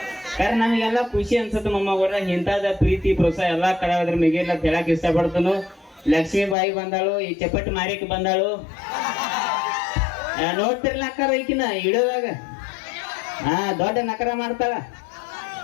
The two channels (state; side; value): drops out; right; at 6.6 s